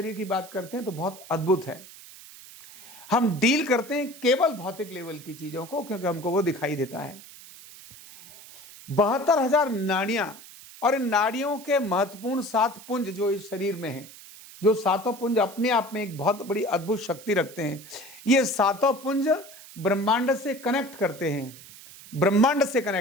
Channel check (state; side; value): noise; right; hiss, 18 dB below the sound